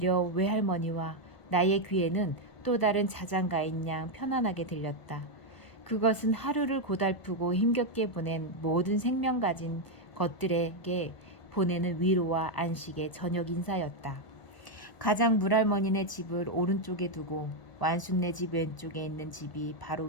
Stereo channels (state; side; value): late; right; 1.4 ms